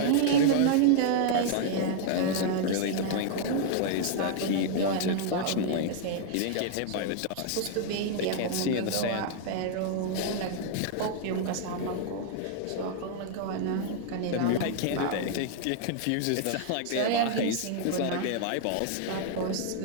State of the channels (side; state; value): both; different; correlation 0.00